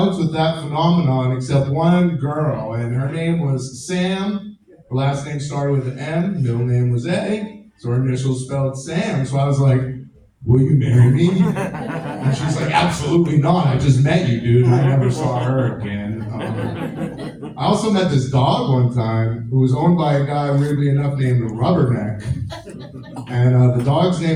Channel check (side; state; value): both; identical; correlation 1.00